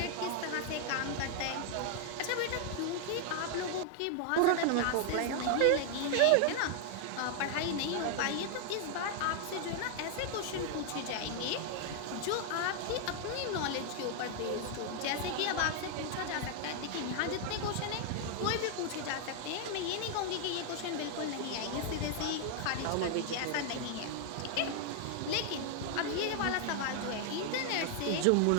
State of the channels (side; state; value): both; different; correlation 0.00